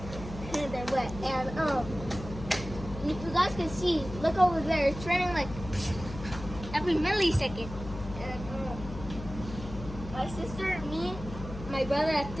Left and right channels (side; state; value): left; noise; hum, 11 dB below the sound